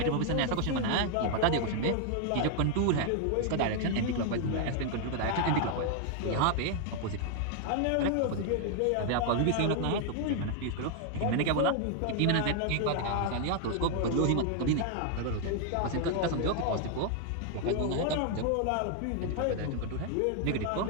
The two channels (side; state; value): both; different; correlation 0.00